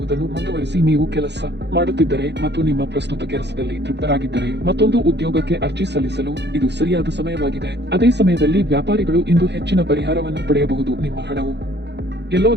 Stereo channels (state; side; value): late; left; 0.50 ms